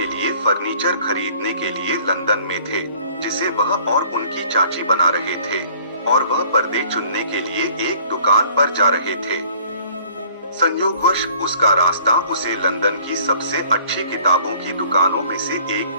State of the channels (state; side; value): inverted; both; correlation -0.53